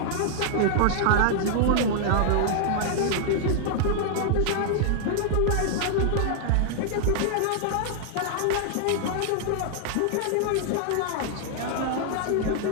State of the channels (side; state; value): both; different; correlation -0.01